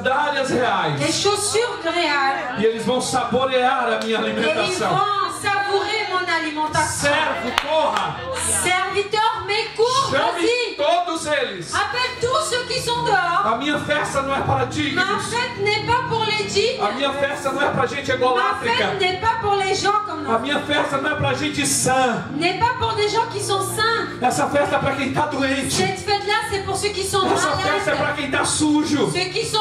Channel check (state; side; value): identical; both; correlation 1.00